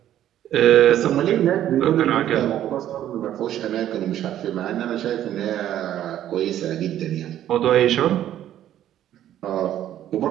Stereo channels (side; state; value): left; quieter; 11.7 dB